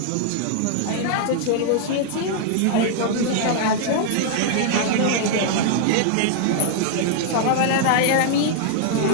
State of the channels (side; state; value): both; different; correlation -0.01